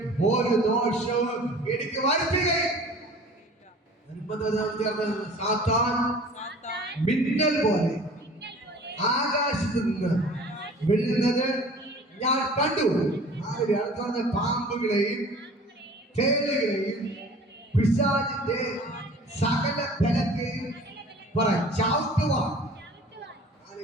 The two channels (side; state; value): both; normal; correlation 0.46